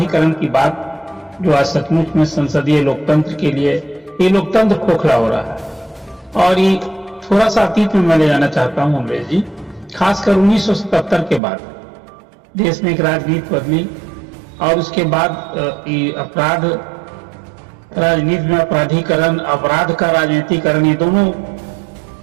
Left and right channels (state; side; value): drops out; left; at 11.4 s